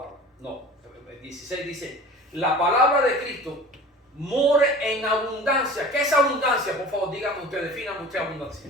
No, el 16 dice, la palabra de Cristo more en abundancia. ¿Qué es abundancia? Por favor, dígame usted, defíname usted abundancia.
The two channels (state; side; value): normal; both; correlation 0.40